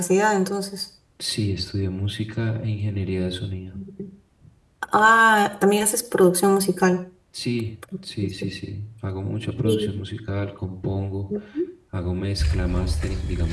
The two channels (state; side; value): identical; both; correlation 1.00